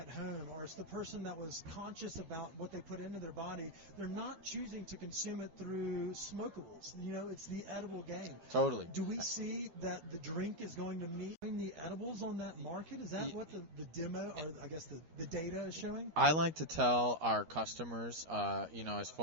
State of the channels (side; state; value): left; late; 13 ms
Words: home, or it's the person that was conscious about what they put into their body. They're not choosing to consume it through smokables. It's the edible game. Totally. Do we see that the drink is going to meet the edibles on that market? Is that what the demo, or I guess the data is showing? I like to tell our customers, as